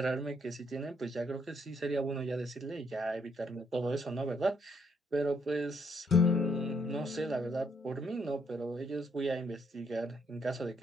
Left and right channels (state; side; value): normal; both; correlation 0.72